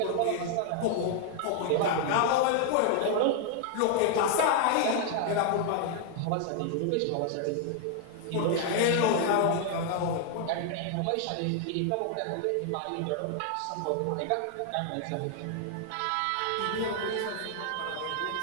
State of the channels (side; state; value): both; different; correlation 0.00